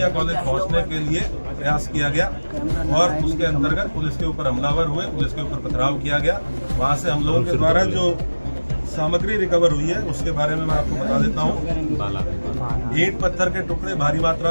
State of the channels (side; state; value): both; inverted; correlation -1.00